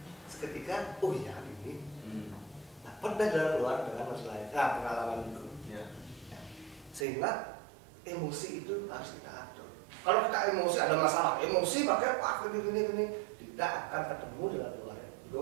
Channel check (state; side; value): drops out; left; at 7.1 s